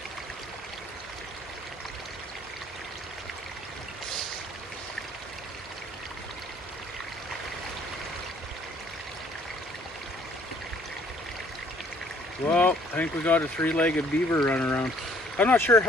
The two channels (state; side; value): normal; both; correlation 0.60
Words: Well, I think we got a three-legged beaver running around. I'm not sure